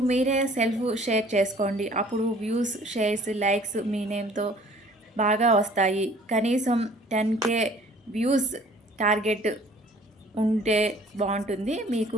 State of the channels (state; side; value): normal; both; correlation 0.53